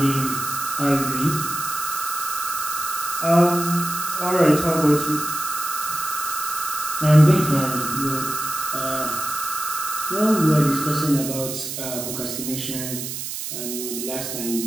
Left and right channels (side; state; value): right; noise; hiss, 6 dB below the sound